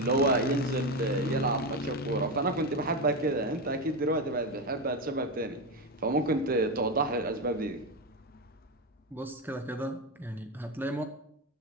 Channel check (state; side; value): normal; both; correlation 0.13